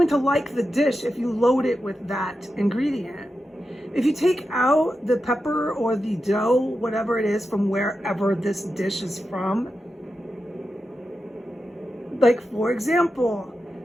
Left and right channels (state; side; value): normal; both; correlation 0.90